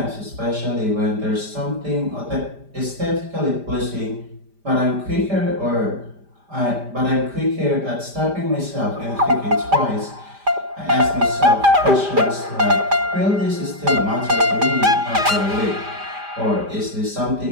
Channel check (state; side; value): late; left; 5.0 ms